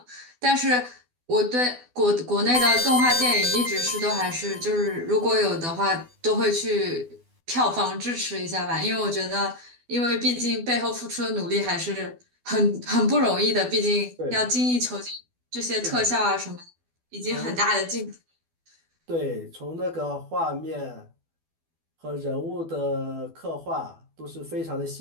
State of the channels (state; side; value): late; left; 12 ms